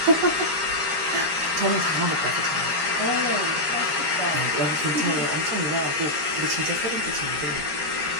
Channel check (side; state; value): left; late; 13 ms